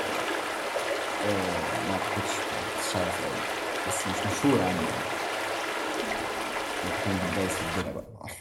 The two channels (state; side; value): identical; both; correlation 1.00